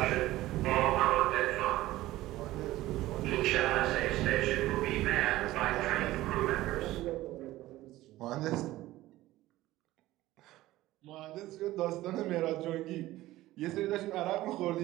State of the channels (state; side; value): quieter; left; 16.5 dB